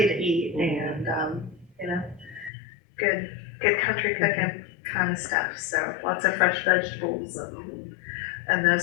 to eat and, good country cooking kind of stuff. So lots of fresh vegetables and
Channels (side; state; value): right; drops out; at 2.5 s